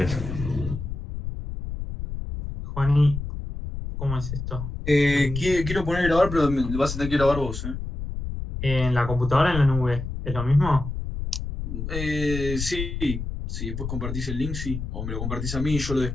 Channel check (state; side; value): noise; left; rumble, 6 dB below the sound